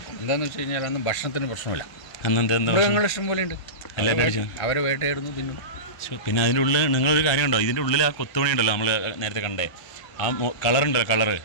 എന്താണെന്ന് വെച്ച് കഴിഞ്ഞാൽ അന്ന് ഭക്ഷണത്തിന് പ്രശ്നമില്ല. അന്ന് എന്താ മൃഗങ്ങൾ ഇഷ്ടം പോലെ ഉണ്ട്. അവരെ വേട്ടയായിരുന്നു തിന്നും. പിന്നെ അതിൻ്റെ ഉള്ളിൽ നിങ്ങളൊരു കാര്യം ഉണ്ടോ? ഇതിൻ്റെ ഉള്ളിൽ ആ കൊത്തുപണി ഉണ്ടല്ലോ, നമ്മൾ നേരത്തെ കണ്ടേ ആ കളറുണ്ടല്ലോ,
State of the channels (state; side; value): late; right; 1.3 ms